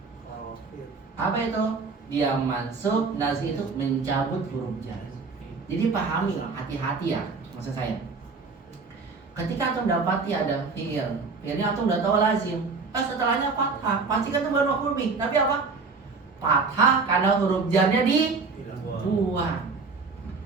Apa itu? Dia mansub, nazi itu mencabut huruf jar. Jadi pahami lah, hati-hati ya maksud saya. Ketika antum dapati ada fi'il, fi'ilnya antum udah tahu lazim. Setelahnya fathah, pasti kan itu baru maf'ul bih. Tapi apa? Fathah karena huruf jarnya dibuang.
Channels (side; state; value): left; quieter; 4.4 dB